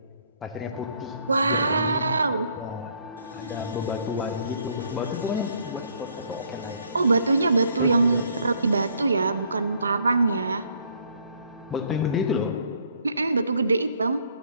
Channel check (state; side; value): inverted; both; correlation -0.64